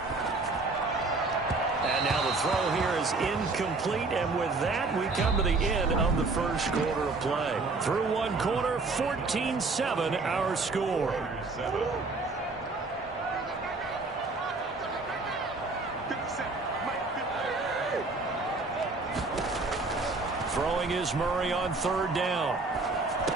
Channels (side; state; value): left; quieter; 3.6 dB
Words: And now the throw here is incomplete, and with that, we come to the end of the first quarter of play. Through one quarter, 14-7 our score. Throwing is Murray on 3rd down.